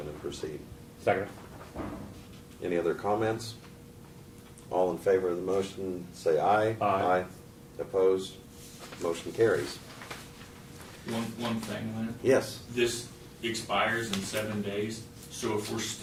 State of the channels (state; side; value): identical; both; correlation 1.00